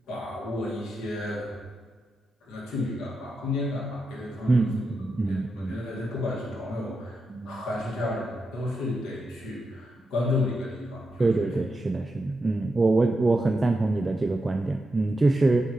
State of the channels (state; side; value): normal; both; correlation 0.87